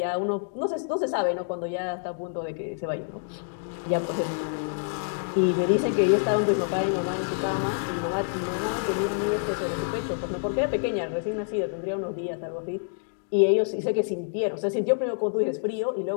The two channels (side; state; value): right; silent; digital silence